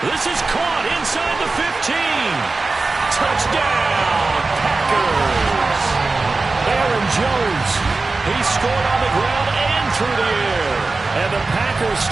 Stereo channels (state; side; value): quieter; left; 3.6 dB